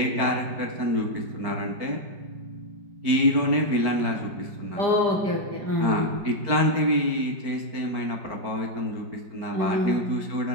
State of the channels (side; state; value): left; late; 4.5 ms